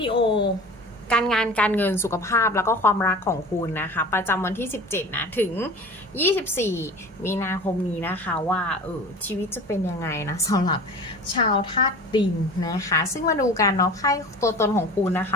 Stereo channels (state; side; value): normal; both; correlation 0.38